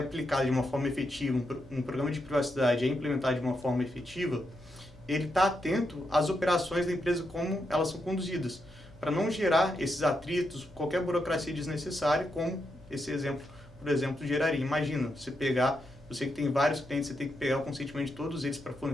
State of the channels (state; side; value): normal; both; correlation 0.83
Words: de uma forma efetiva, um programa de privacidade é implementado de uma forma efetiva, ele está atento às operações da empresa, como elas são conduzidas, para não gerar esses atritos, qualquer burocracia desnecessária, como esse exemplo, por exemplo, geraria. Imagina, você que tem vários clientes, você tem que pegar o consentimento de todos eles para